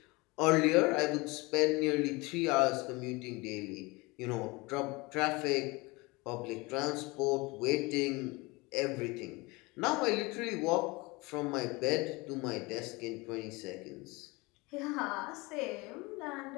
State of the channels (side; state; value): right; quieter; 24.6 dB